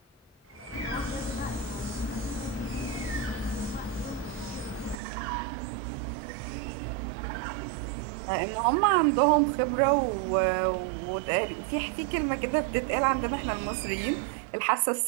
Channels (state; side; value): drops out; left; at 5.0 s